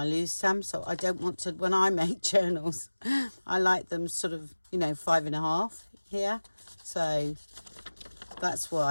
lose some. So I don't want to, when I make journals, I like them sort of, you know, 5.5 here. So that's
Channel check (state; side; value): inverted; both; correlation -1.00